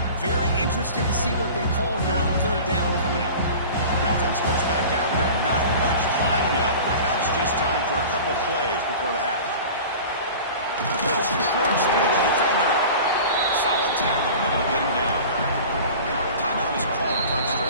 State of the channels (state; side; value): inverted; both; correlation -0.39